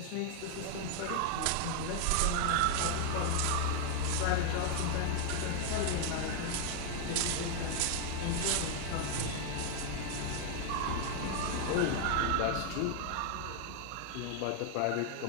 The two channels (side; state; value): both; different; correlation 0.00